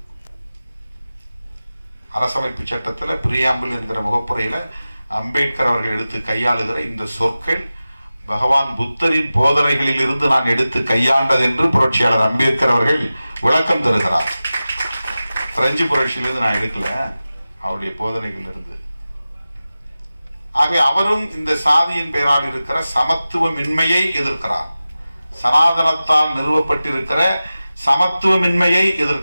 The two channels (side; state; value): both; inverted; correlation -0.95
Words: அரசமைப்பு சட்டத்தில் பிரியாம்பிள் என்கிற முகப்புரையில அம்பேத்கர் அவர்கள் எடுத்து கையாளுகிற இந்த சொற்கள் பகவான் புத்தரின் போதனைகளில் இருந்து நான் எடுத்து கையாண்டது என்று புரட்சியாளர் அம்பேத்கர் அவர்கள் விளக்கம் தருகிறார். பிரெஞ்சு புரட்சியிலிருந்து நான் எடுக்கல, அவருடைய போதனைகள் இருந்து. ஆகவே அவரும் இந்த சாதியின் பெயரால் இருக்கிற சமத்துவமின்மையை எதிர்க்கிறார். சனாதனத்தால் நிறுவப்பட்டிருக்கிற சமத்துவமின்மையை